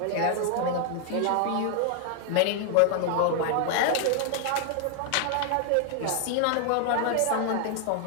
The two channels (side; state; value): both; different; correlation 0.00